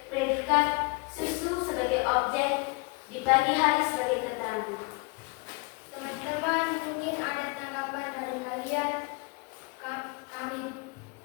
predikat, susu sebagai objek, di pagi hari sebagai keterangan. Teman-teman, mungkin ada tanggapan dari kalian.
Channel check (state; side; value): quieter; right; 28.4 dB